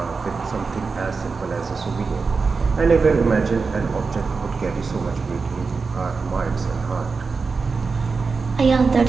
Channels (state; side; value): quieter; left; 4.7 dB